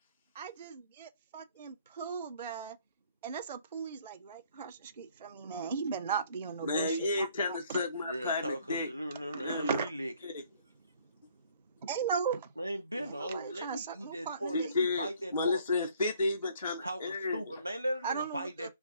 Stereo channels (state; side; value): inverted; both; correlation -0.61